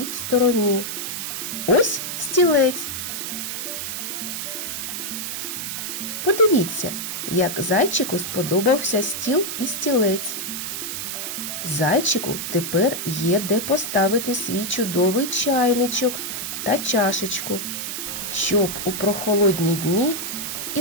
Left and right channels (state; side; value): noise; right; hiss, 4 dB below the sound